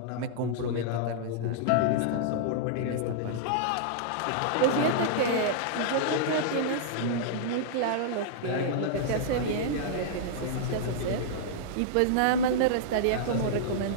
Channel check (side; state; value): both; different; correlation -0.02